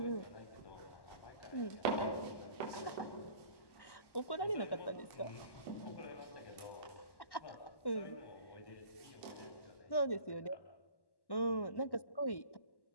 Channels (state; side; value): late; right; 1.1 ms